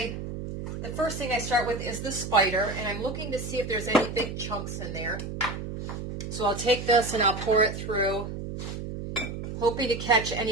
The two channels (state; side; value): noise; right; hum, 7 dB below the sound